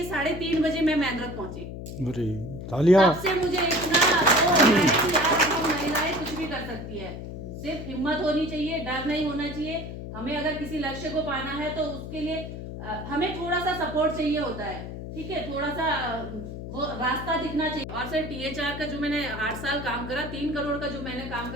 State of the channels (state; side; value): noise; left; hum, 9 dB below the sound